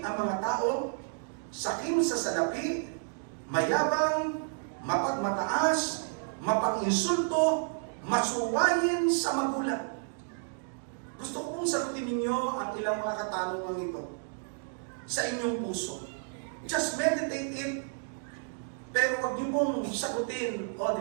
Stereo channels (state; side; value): silent; left; digital silence